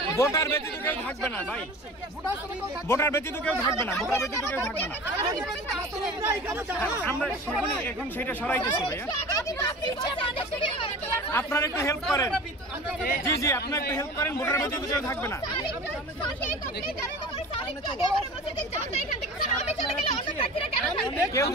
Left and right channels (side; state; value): both; normal; correlation 0.37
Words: ভোটার ব্যতীত কেউ থাকবে না ভাই, ভোটার ব্যতীত কেউ থাকবে না, ভোটার ব্যতীত কেউ থাকবে না। আমরা এখন সেটা সরাইতেছি ভাইয়া, আপনারা একটু হেল্প করেন। জি জি, আপনারা একটু হেল্প করেন, ভোটার ব্যতীত কেউ থাকবে না। কেউ